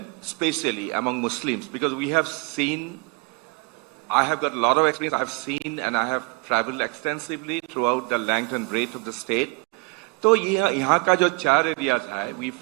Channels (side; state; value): left; quieter; 27.9 dB